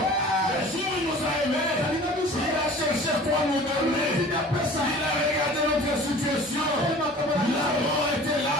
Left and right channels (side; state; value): both; normal; correlation 0.44